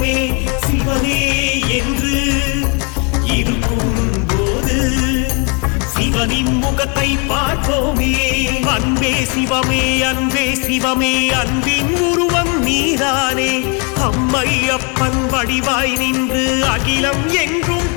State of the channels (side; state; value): right; quieter; 34.3 dB